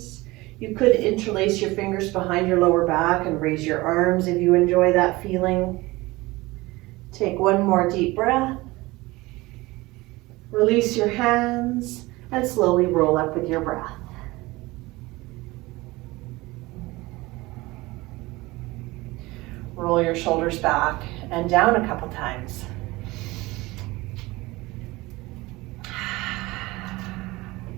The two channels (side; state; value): left; quieter; 21.0 dB